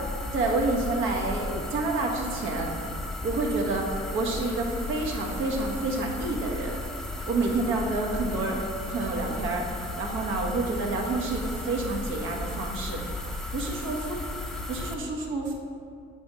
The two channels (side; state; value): both; normal; correlation 0.43